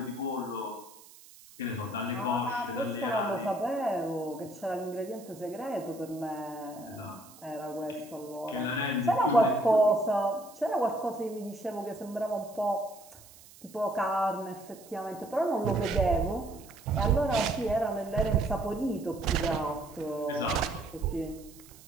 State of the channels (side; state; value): right; noise; hiss, 21 dB below the sound